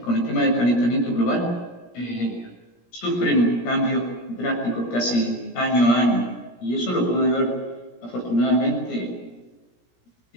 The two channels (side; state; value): right; late; 17 ms